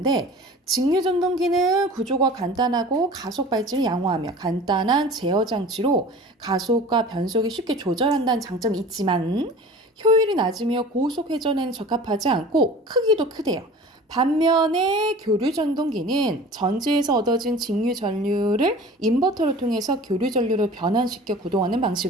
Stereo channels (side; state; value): both; normal; correlation 0.41